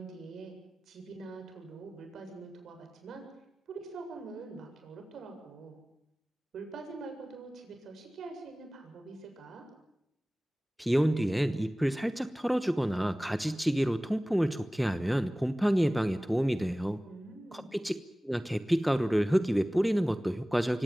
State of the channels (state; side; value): normal; both; correlation 0.98